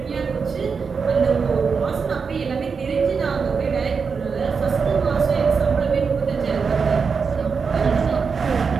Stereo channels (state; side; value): quieter; left; 5.5 dB